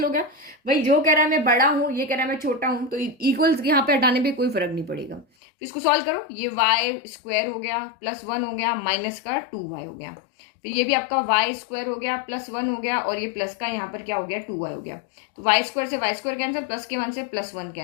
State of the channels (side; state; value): right; drops out; at 5.2 s